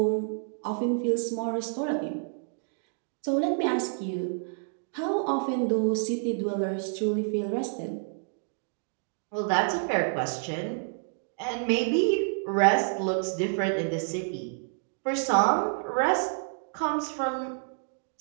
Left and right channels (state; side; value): silent; left; digital silence